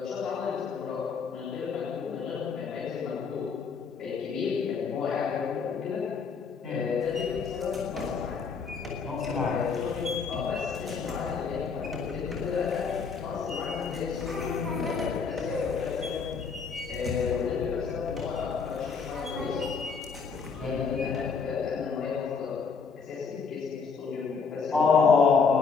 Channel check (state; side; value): quieter; right; 5.5 dB